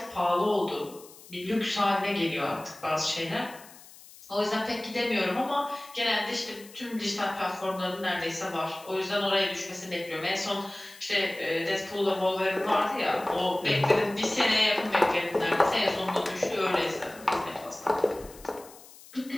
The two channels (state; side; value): noise; left; hiss, 20 dB below the sound